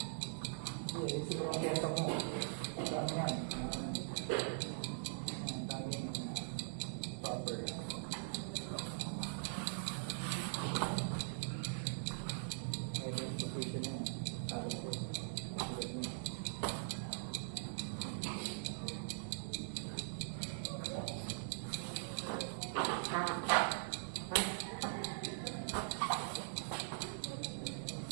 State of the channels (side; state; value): left; silent; digital silence